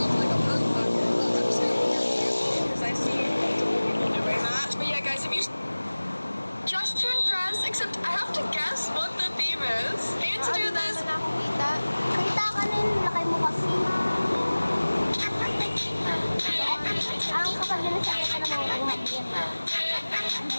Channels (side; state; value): both; inverted; correlation -1.00